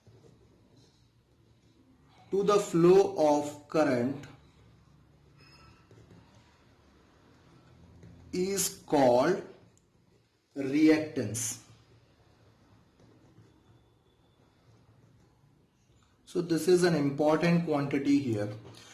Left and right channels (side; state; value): both; identical; correlation 1.00